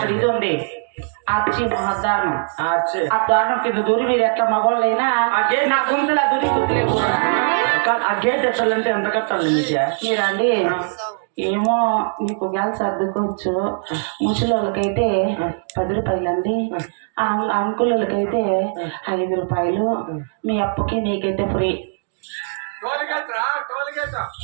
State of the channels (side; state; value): left; silent; digital silence